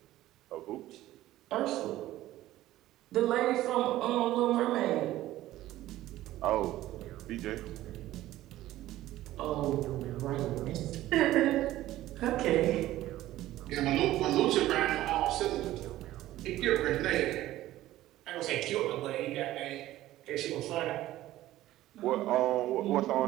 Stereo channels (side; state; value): left; quieter; 15.1 dB